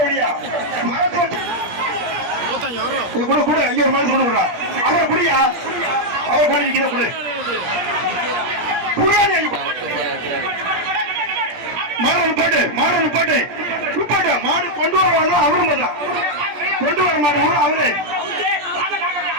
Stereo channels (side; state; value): left; late; 17 ms